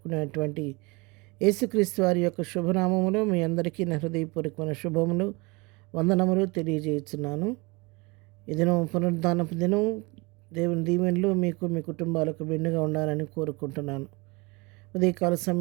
యేసుక్రీస్తు వారి యొక్క శుభనామములో మీ అందరికీ నా హృదయపూర్వకమైన శుభములు, వందనములు తెలియజేస్తున్నాను. ఈ దినం పునరుద్ధానపు దినం. దేవుని దీవెనలు మీకు మీ కుటుంబాలకు మెండుగా ఉండాలని కోరుకుంటున్నాను. ఉదయకాల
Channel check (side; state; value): left; quieter; 26.5 dB